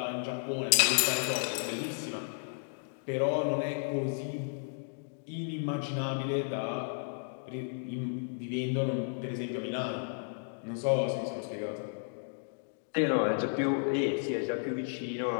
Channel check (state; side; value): silent; right; digital silence